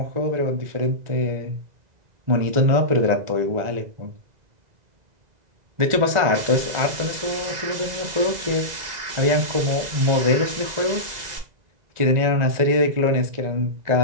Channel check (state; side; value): late; left; 2.0 ms